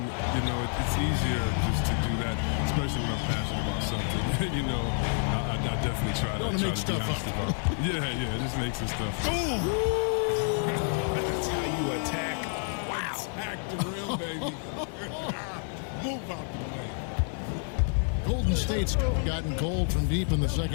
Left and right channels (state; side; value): silent; right; 57 dB below the other